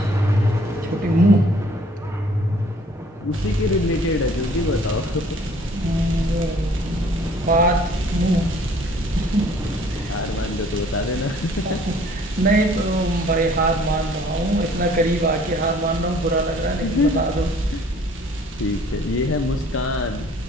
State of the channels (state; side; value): normal; both; correlation 0.56